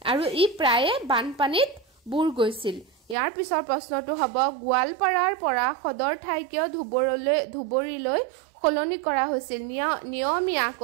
আৰু ই প্ৰায়ে বানপানীত বুৰ গৈছিল ইয়াৰ পিছৰ প্ৰশ্নটো হ'ব গোৱালপাৰাৰ পৰা সদৰ ঠাই কিয় ধুবুৰীলৈ সলনি কৰা হৈছিল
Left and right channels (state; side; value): drops out; left; at 3.2 s